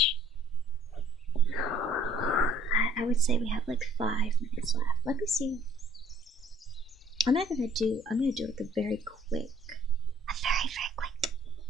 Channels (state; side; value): normal; both; correlation 0.59